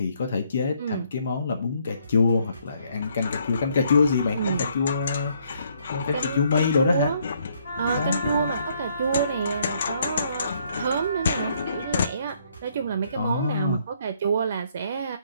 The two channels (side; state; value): both; inverted; correlation -0.69